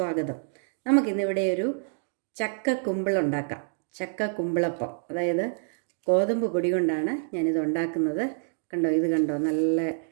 നമുക്കിന്നിവിടെ ഒരു ചക്ക കുമ്പിളുണ്ടാക്കാം. ചക്ക കുമ്പിളപ്പം, അതായത് ഗോതമ്പ് പൊടി കൊണ്ടാണ് ഞാനിത് ഉണ്ടാക്കുന്നത്. കണ്ടോ, ഇത് കണ്ടോ, നല്ല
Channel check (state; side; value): silent; left; digital silence